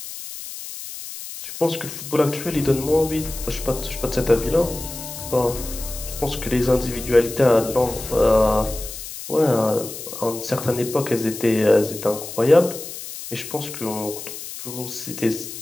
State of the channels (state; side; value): noise; left; hiss, 10 dB below the sound